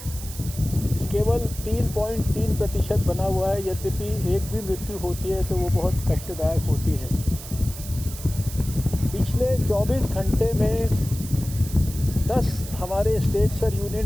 केवल 3.3% बना हुआ है। यद्यपि एक भी मृत्यु होती है तो वो बहुत कष्टदायक होती है। पिछले 24 घंटे में 10 हमारे स्टेट्स और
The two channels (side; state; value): right; noise; hiss, 13 dB below the sound